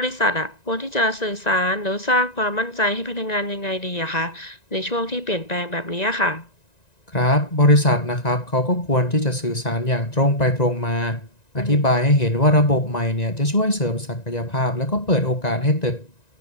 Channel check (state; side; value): late; right; 1.9 ms